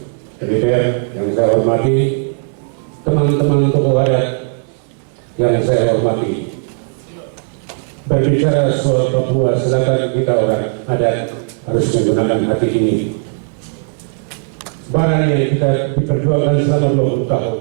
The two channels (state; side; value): silent; left; 60 dB below the other